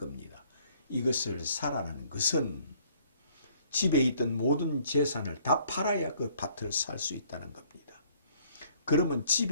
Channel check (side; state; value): both; inverted; correlation -0.61